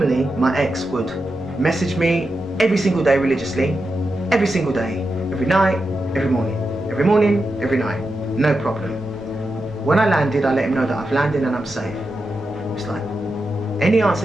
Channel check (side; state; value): both; normal; correlation 0.88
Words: my ex would message me every single day religiously, every single day, every night, every morning, every night, no problem. When I landed, I let him know that I've landed and I'm safe. It's like, any answer